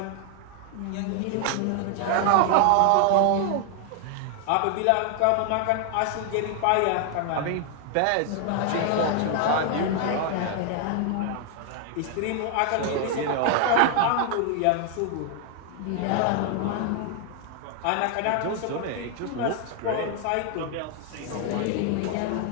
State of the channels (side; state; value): both; different; correlation 0.00